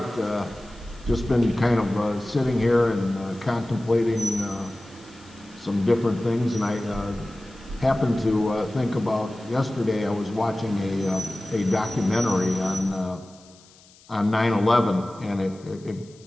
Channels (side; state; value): left; noise; hiss, 26 dB below the sound